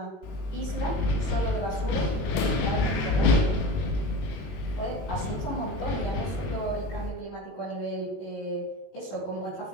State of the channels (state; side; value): late; right; 21 ms